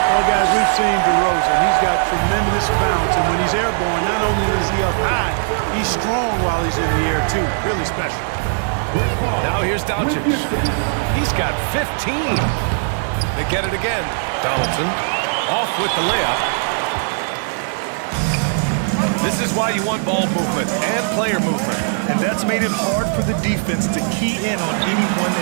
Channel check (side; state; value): left; silent; digital silence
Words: Well, guys, we've seen DeRozan. He's got tremendous bounce, and when he's airborne, not only is he up high, he's strong while he's in the air, too. Really special. Now here's Doncic. He's got 15. They get it again. Donaldson off with the layup. This This is why you want ball movement and player movement. And that's made it hard for the defense to key in on any one